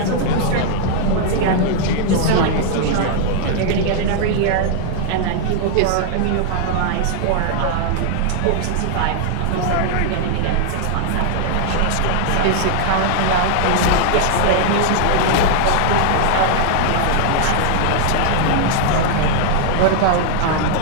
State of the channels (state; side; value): different; both; correlation -0.01